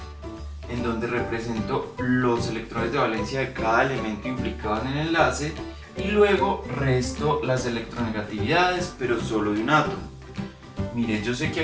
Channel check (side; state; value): both; identical; correlation 1.00